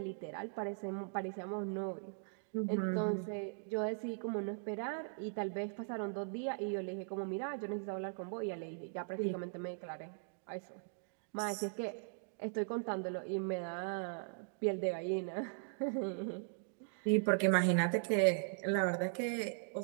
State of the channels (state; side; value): silent; left; digital silence